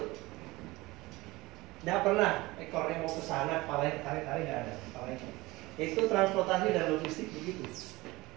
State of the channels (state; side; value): quieter; left; 20.7 dB